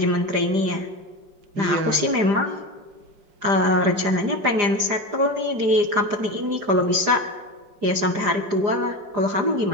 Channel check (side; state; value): left; late; 4.9 ms